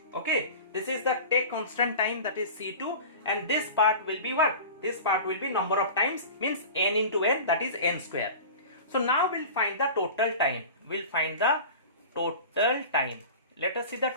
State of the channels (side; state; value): both; inverted; correlation -0.35